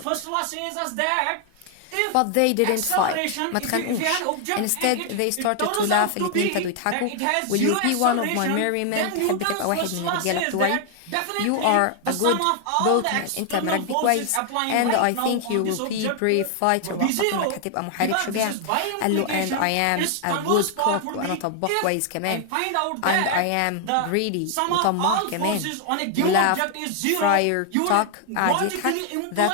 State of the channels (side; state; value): both; different; correlation 0.00